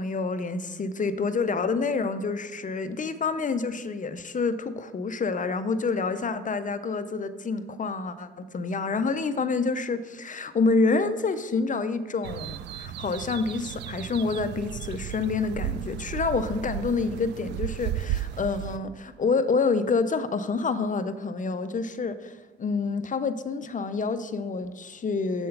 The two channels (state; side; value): quieter; right; 3.2 dB